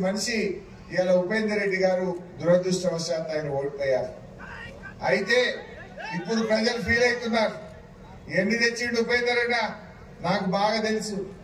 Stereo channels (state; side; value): identical; both; correlation 1.00